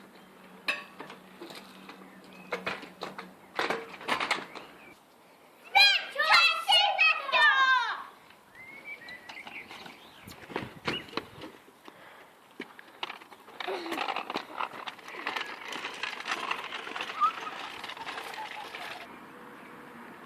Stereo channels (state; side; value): identical; both; correlation 1.00